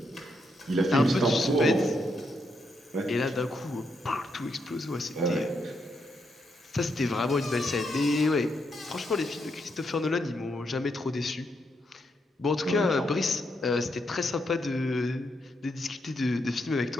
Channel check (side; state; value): both; normal; correlation 0.80